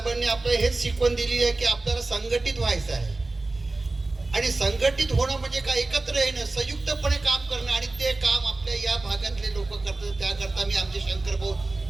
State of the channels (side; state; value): left; quieter; 3.2 dB